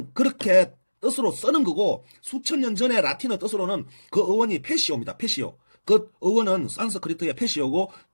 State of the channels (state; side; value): inverted; both; correlation -1.00